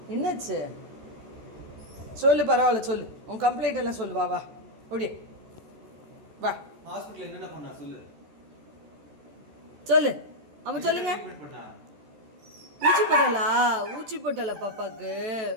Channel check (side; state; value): left; late; 14 ms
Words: சொல்லு, பரவாயில்ல சொல்லு, உன் கம்ப்ளைண்ட் எல்லாம் சொல்லு. வா அப்படியே வா. ஹாஸ்பிடல்ல என்னென்ன பண்ணா சொல்லு. அவன் சொல்லுங்க. ஊசி போட்டாளா பாப்பாக்கு?